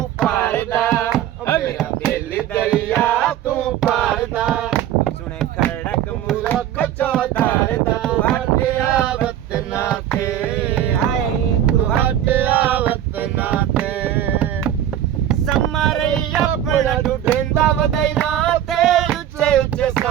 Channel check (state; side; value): quieter; left; 11.3 dB